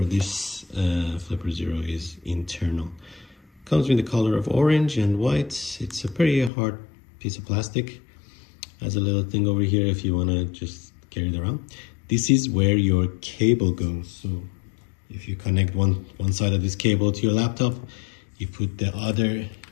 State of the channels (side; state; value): right; drops out; at 6.5 s